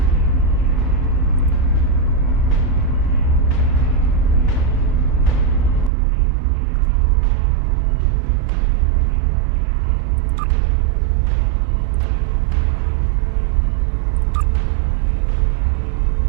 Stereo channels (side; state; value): left; drops out; at 5.9 s